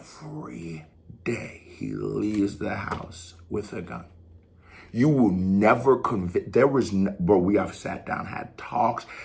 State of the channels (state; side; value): identical; both; correlation 1.00